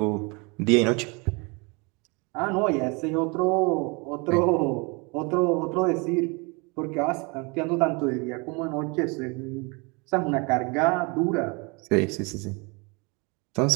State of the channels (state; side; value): quieter; left; 29.8 dB